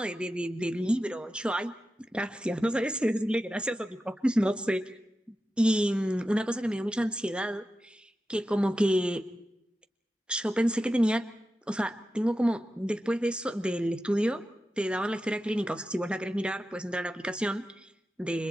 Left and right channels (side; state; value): both; normal; correlation 0.92